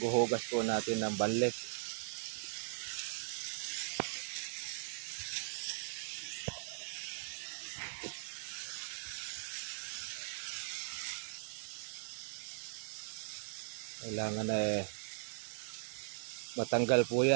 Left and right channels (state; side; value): silent; left; digital silence